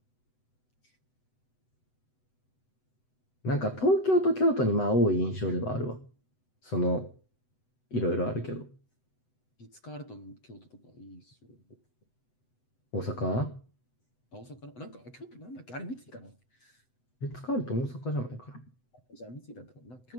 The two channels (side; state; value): right; late; 8.0 ms